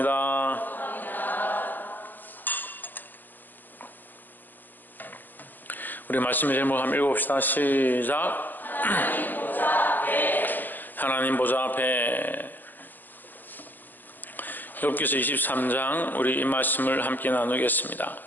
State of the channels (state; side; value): late; right; 0.089 ms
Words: 우리 말씀의 제목 한번 읽어봅시다. 시작. 하나님 보좌 앞에. 욥기서 23장 우리 이 말씀을 함께 나누겠습니다.